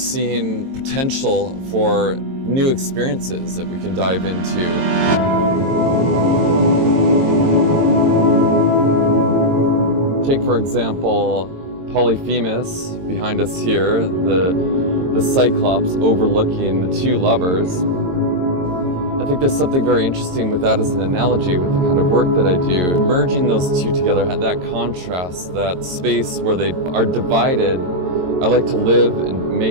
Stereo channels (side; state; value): left; late; 22 ms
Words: potential for new experiences that we can dive into. Take, for example, Polyphemus behind us here, the Cyclops overlooking the two lovers. I think there's something very interesting with that as an analogy with the kind of work that I do. Merging those two together, that contrast, that space where they are divided, I like to live and